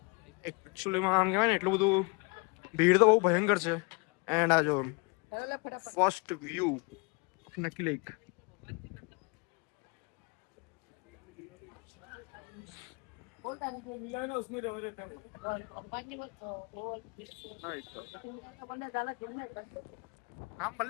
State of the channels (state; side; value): quieter; right; 31.0 dB